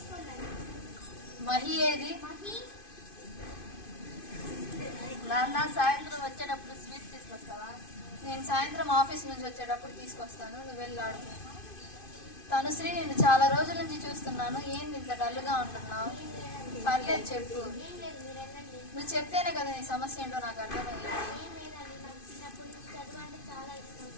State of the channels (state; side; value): late; right; 2.5 ms